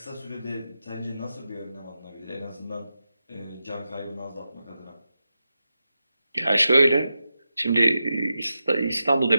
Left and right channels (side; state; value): both; inverted; correlation -0.90